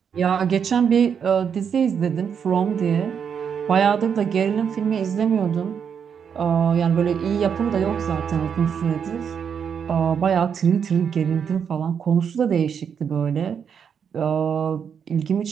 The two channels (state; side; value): quieter; left; 7.3 dB